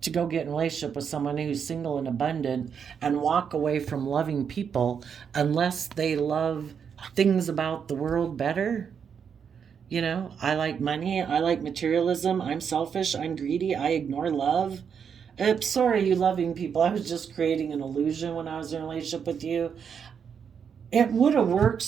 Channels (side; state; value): left; quieter; 7.1 dB